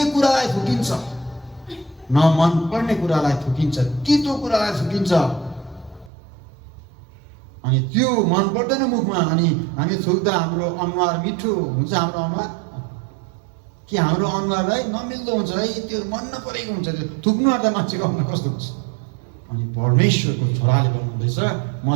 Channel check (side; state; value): left; drops out; at 6.1 s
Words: कुरालाई थुकिन्छ? न मन पर्ने कुरालाई थुकिन्छ, तितो कुरालाई थुकिन्छ। अनि त्यो मन पर्दैन मुखमा, अनि हामी थुक्दा हाम्रो अनुहार मिठो हुन्छ। हाम्रो अनुहार कि हाम्रो अनुहारलाई नमिल्दो हुन्छ है, त्यो मन नपरेको हुन्छ। त्यो थुक्नु आँट्दा मान्छेको अनुहार कस्तो हुन्छ? अनि परमेश्वरको छोराले भन्नुहुँदैछ, म